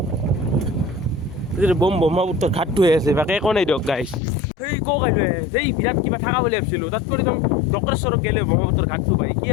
ব্ৰহ্মপুত্ৰৰ ঘাটটো হৈ আছে বাকী একো নাই দিয়ক গাইজ সেই ক কাইলৈ এই বিৰাট কিবা থকা বুলি ভাবিছিলোঁ তাত কৰি যাওঁ ডক্ৰেশ্বৰক গ'লে ব্ৰহ্মপুত্ৰৰ ঘাটটো পাই কি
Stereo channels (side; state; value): right; drops out; at 4.2 s